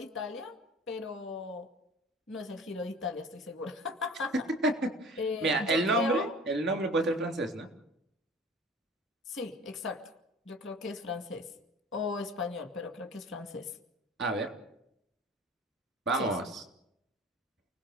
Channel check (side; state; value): both; normal; correlation 0.43